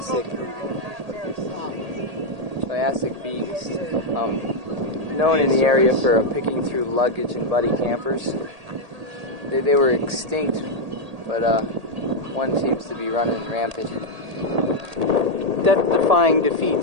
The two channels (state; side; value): late; left; 1.8 ms